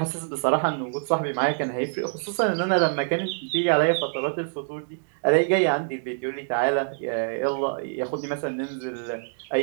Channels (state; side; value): silent; left; digital silence